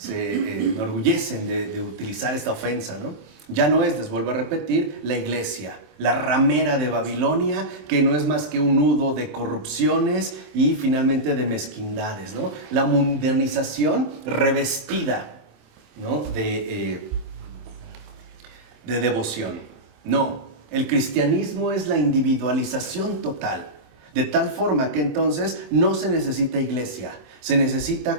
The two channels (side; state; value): left; late; 27 ms